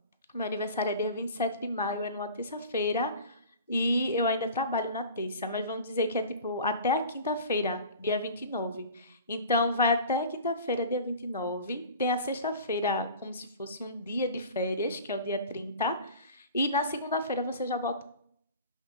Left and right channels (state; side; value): inverted; both; correlation -0.40